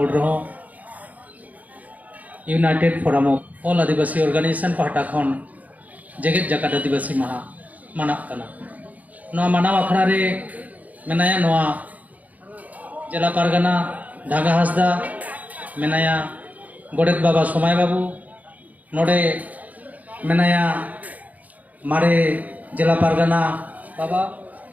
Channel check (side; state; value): left; late; 0.076 ms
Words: रहो united forum of all Adivasi organisation पहटा खन जेगेत जगत आदिवासी महा मानक कना नोआ मानव अखड़ा रे मेनाया नोआ जिला पारगना ढागा हासदा मेनाया गोडेत बाबा सोमाय बाबू नोडे मेनाया मारे जिला पारगना बाबा